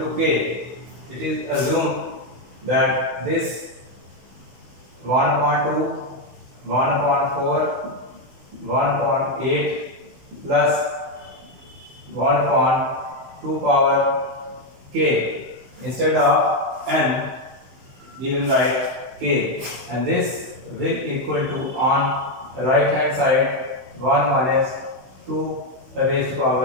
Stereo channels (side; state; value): left; late; 16 ms